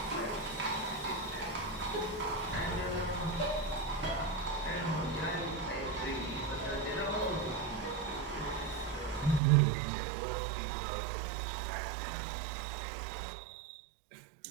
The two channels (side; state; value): left; drops out; at 9.4 s